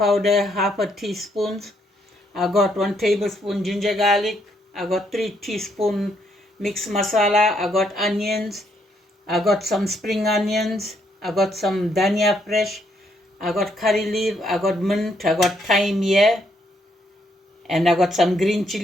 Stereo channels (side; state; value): both; normal; correlation 0.73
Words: half a teaspoon. I got 1 tablespoon ginger garlic. I got 3 teaspoon mixed masala. I got onions. I got some spring onions. I got some dhania fresh. I got curry leaf. I got mint. I got thyme here. And I got some green